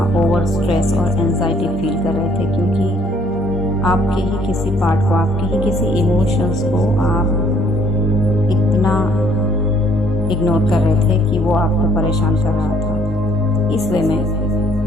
ओवर स्ट्रेस और एंजाइटी फील कर रहे थे, क्योंकि आपके ही किसी पार्ट को, आपके ही किसी इमोशंस को आप इतना इग्नोर कर रहे थे कि वो आपको परेशान कर रहा था, इस वे में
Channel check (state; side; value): normal; both; correlation 0.62